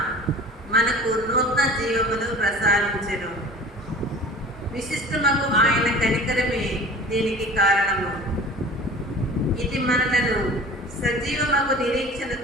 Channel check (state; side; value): normal; both; correlation 0.41